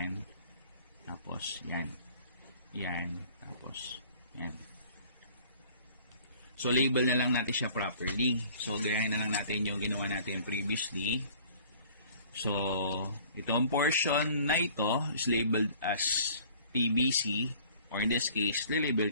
tapos yan, yan, tapos yan. So, label na lang natin siya properly. So, gayahin na lang natin yung ginawa natin previously. So, itong portion na ito is labeled as PBC, or in this case,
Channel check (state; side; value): inverted; both; correlation -0.52